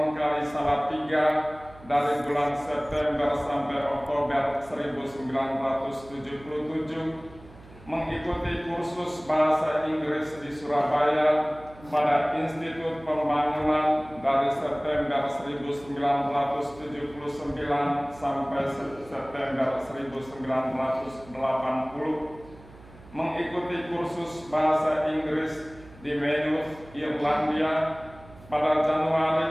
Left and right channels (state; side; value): noise; right; hum, 21 dB below the sound